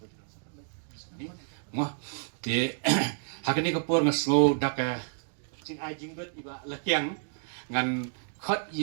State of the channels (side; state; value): left; silent; digital silence